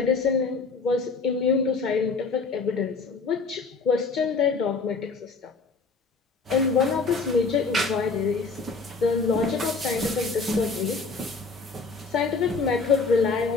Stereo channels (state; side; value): quieter; right; 4.3 dB